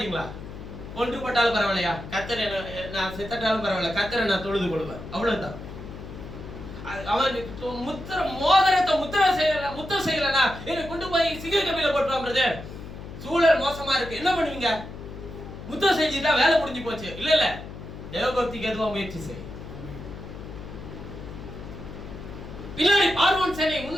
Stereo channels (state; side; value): noise; left; hum, 12 dB below the sound